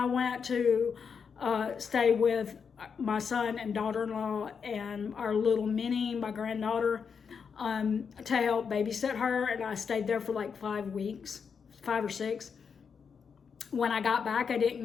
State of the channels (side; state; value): right; quieter; 6.3 dB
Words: went to stay with my son and daughter-in-law and our little Minnie, my granddaughter, to help babysit her. And I stayed there for 5 or 6. When I got back, I